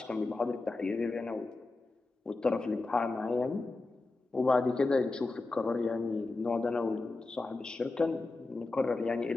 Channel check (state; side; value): quieter; right; 3.3 dB